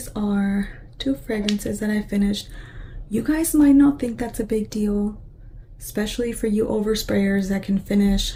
are 2 fragrances that I finished. You guys might not think that's a big deal, especially for you oversprayers that can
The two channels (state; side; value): identical; both; correlation 1.00